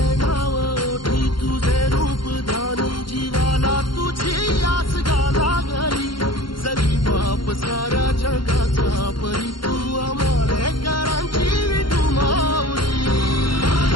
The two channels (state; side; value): late; right; 0.73 ms